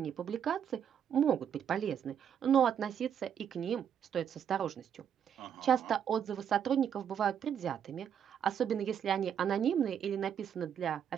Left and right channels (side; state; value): left; quieter; 8.5 dB